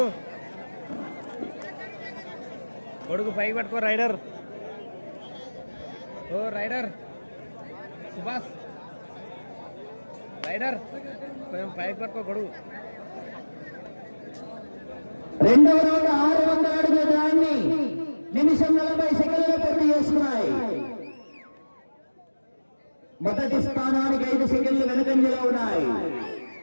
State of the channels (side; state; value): both; inverted; correlation -1.00